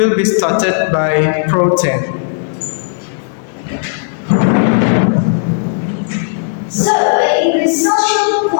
be started by Protein. So, English Social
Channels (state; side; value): silent; right; digital silence